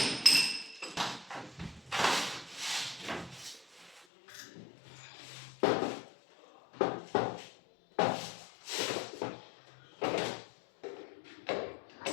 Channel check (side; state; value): right; drops out; at 4.0 s